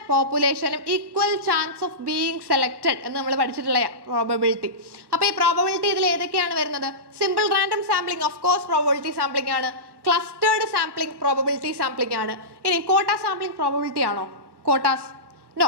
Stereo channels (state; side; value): late; left; 1.2 ms